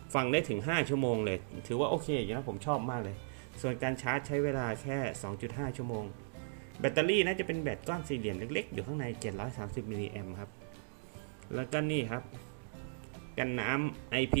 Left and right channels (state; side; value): silent; left; digital silence